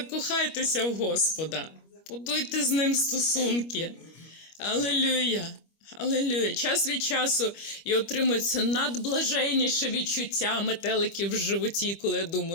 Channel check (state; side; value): late; right; 25 ms